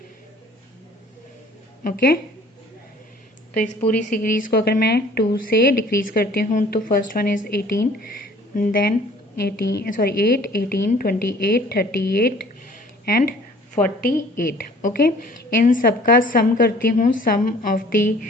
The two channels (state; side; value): normal; both; correlation 0.52